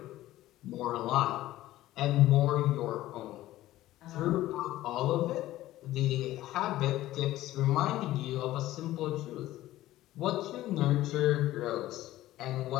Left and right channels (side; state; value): right; quieter; 15.3 dB